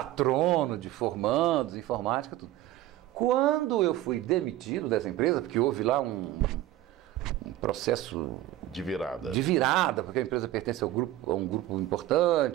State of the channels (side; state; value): left; quieter; 14.5 dB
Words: de formandos, informática, tudo. Quando eu fui demitido dessa empresa, porque houve lá um processo de virada, porque a empresa pertence a um grupo